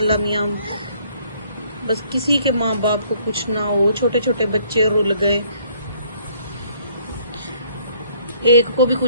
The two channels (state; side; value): inverted; both; correlation -0.62